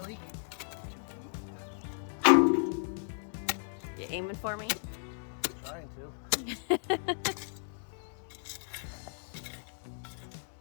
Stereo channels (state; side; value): silent; right; digital silence